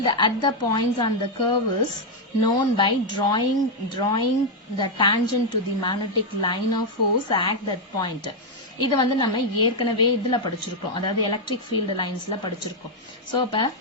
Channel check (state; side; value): normal; both; correlation 0.01